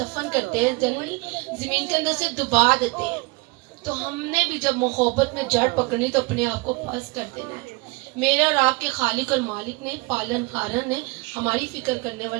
کرتے ہیں، جنرلی زمین کے اندر سے دبا دیتے ہیں. تو ہم نے بھی جب محبت میں جڑ پکڑنی تو اپنے آپ کو پس کر دینا ہے. میرے اور آپ کے خالق اور مالک نے، پالن ہارن نے، ہماری فکر کرنے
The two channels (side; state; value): left; quieter; 26.7 dB